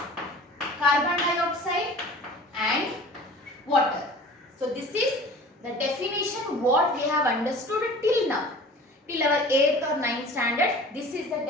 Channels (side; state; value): both; normal; correlation 0.43